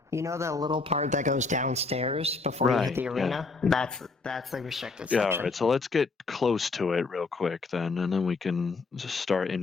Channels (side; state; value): right; quieter; 4.0 dB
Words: You know the little part that goes downstairs before you hit the arena? Yeah. That's the restricted section. Yeah, all right. So let's get close to it real quick then, and then we can just start in